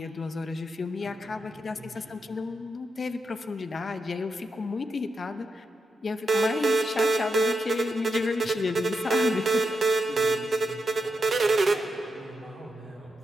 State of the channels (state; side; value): normal; both; correlation 0.86